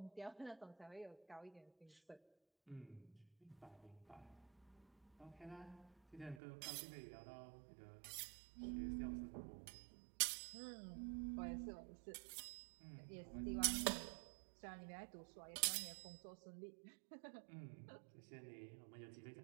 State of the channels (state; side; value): drops out; left; at 6.4 s